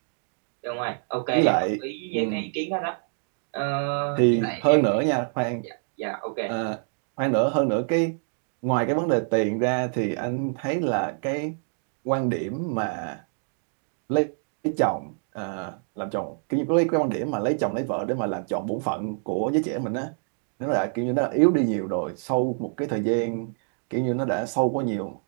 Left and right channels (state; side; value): silent; left; digital silence